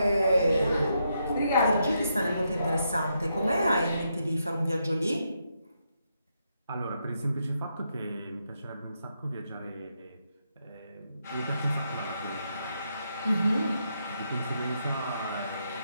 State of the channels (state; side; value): inverted; both; correlation -0.81